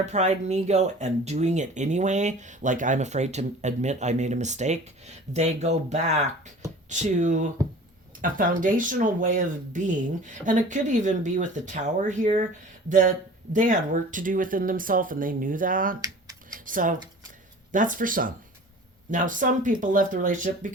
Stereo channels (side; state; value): both; normal; correlation 0.43